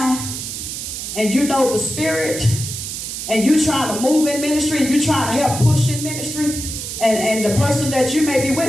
and you know the spirit and you trying to move in ministry and you trying to help push in ministry, and the person that you may be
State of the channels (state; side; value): noise; right; hiss, 6 dB below the sound